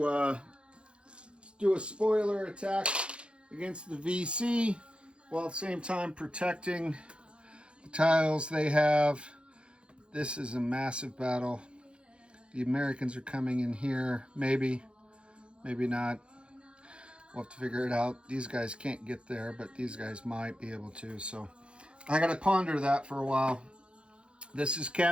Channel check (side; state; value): left; late; 0.057 ms